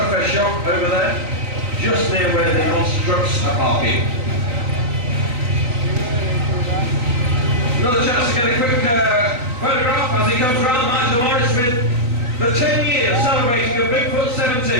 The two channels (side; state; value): left; late; 3.9 ms